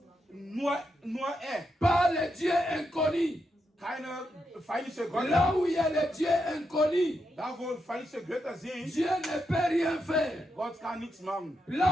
Nur er. pas le Dieu inconnu. Keine feindliche Götter. Là où il y a le Dieu inconnu, Da wo feindliche Götter sind, Dieu ne peut rien faire. Gott kann nichts machen.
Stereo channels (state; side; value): normal; both; correlation 0.83